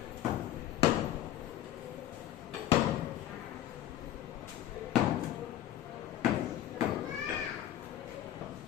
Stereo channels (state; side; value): quieter; right; 12.3 dB